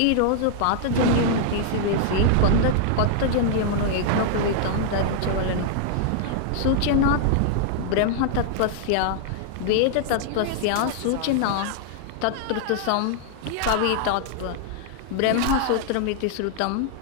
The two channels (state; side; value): different; both; correlation 0.00